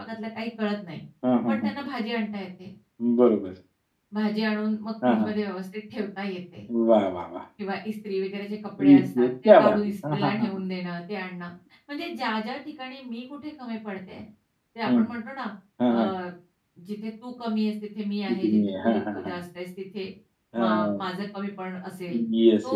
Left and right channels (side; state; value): both; identical; correlation 1.00